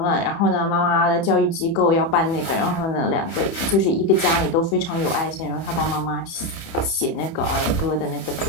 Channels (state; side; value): late; right; 31 ms